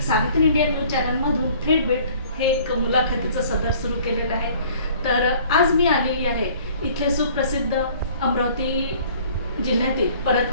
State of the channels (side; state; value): both; inverted; correlation -0.53